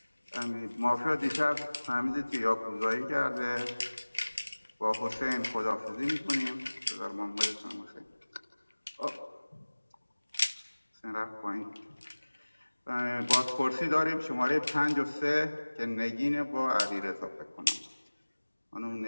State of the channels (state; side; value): inverted; both; correlation -1.00